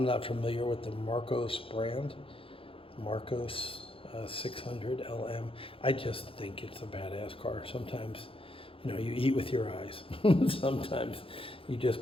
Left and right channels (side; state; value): right; late; 0.27 ms